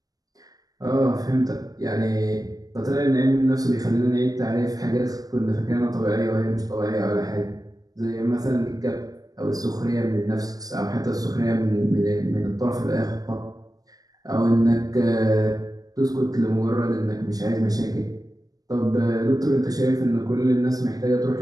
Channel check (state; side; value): late; left; 0.18 ms